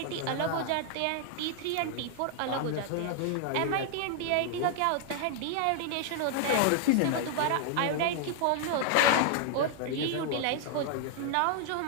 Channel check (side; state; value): both; different; correlation 0.00